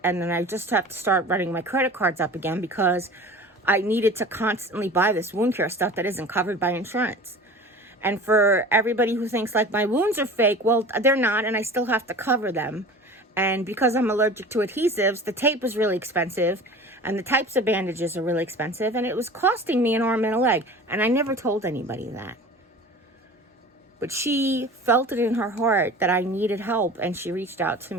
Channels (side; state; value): both; normal; correlation 0.39